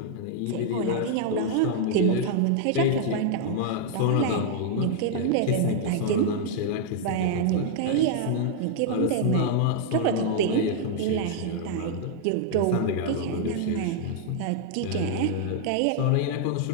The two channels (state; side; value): different; both; correlation 0.00